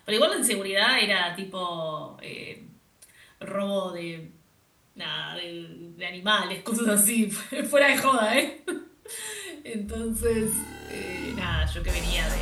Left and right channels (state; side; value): identical; both; correlation 1.00